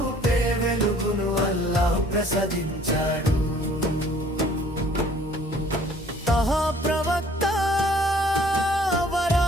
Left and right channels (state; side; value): normal; both; correlation 0.56